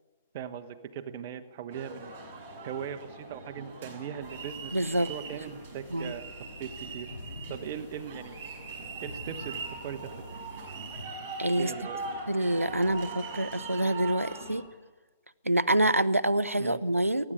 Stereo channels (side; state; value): both; inverted; correlation -0.75